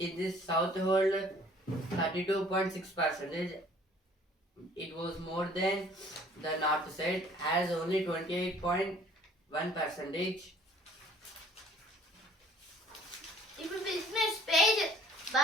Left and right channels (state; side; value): normal; both; correlation 0.55